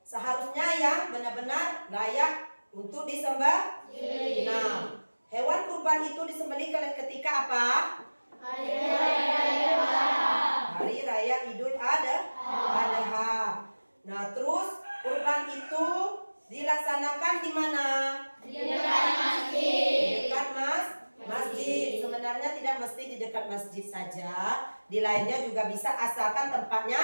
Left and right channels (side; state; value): both; inverted; correlation -1.00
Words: seharusnya yang benar-benar layak untuk disembah. Nah, hewan kurban itu disembelih ketika apa? Hari Raya Idul Adha. Nah, terus kurban itu dilaksanakan di mana? Di dekat masjid. Di dekat masjid. Sebenarnya tidak mesti di dekat masjid saja. Di lainnya juga bisa asalkan tempatnya